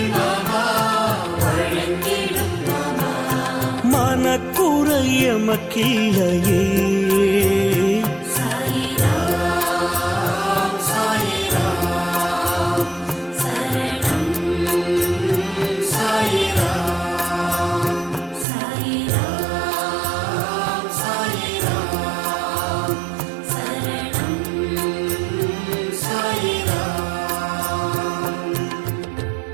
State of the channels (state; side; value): drops out; left; at 18.4 s